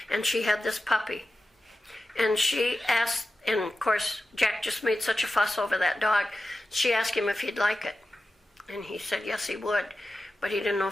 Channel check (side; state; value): both; normal; correlation 0.93